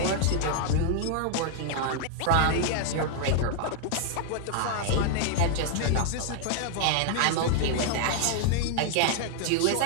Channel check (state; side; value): different; both; correlation 0.00